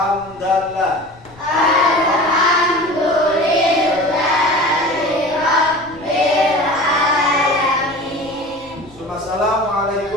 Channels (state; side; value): noise; left; rumble, 25 dB below the sound